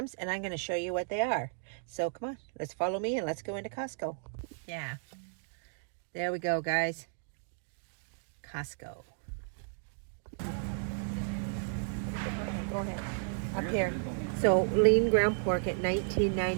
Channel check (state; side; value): silent; left; digital silence